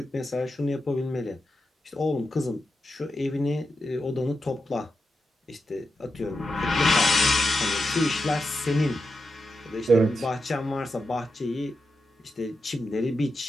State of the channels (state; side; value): normal; both; correlation 0.88